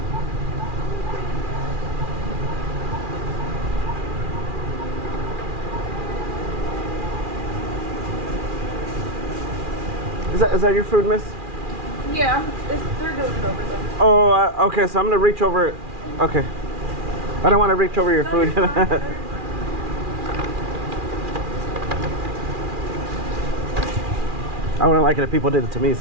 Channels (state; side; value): late; left; 2.4 ms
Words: Is that your food, miss? Yeah, they're doing it over there. Oh, okay, so I'm gonna reach over it. Okay. I don't want to reach over your food. I wouldn't like it if people did it to me,